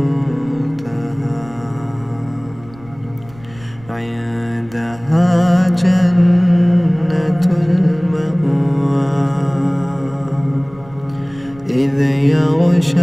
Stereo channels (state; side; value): noise; right; rumble, 22 dB below the sound